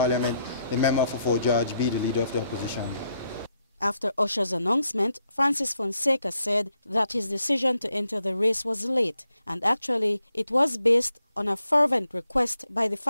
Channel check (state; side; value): inverted; both; correlation -0.79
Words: the member for Fort George, be the leader of the opposition. After Usher's announcement, Francis Fonseca said that his decision to enter the race was late, and actually it was based on a fervent request by the